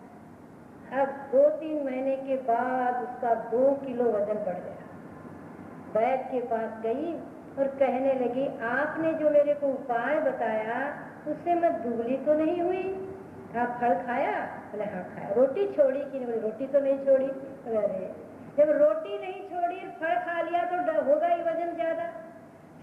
अब 2-3 महीने के बाद उसका 2 किलो वजन बढ़ गया। वैद्य के पास गई और कहने लगी, आपने जो मेरे को उपाय बताया उससे मैं दुबली तो नहीं हुई? आप फल खाया? बोले हाँ खाया। रोटी छोड़ी कि नहीं? बोले रोटी तो नहीं छोड़ी। अरे जब रोटी नहीं छोड़ी फल खा लिया तो होगा ही वजन ज्यादा।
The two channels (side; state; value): both; identical; correlation 1.00